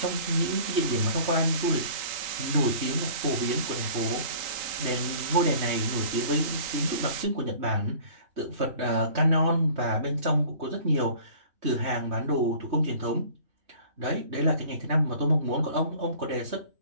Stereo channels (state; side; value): late; left; 3.8 ms